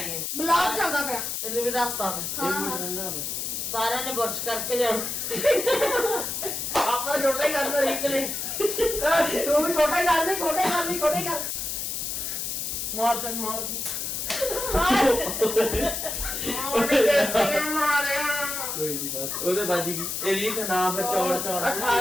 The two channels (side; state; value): left; noise; hiss, 3 dB below the sound